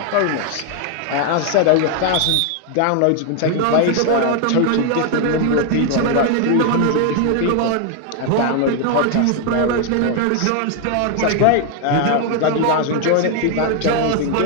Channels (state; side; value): different; both; correlation 0.00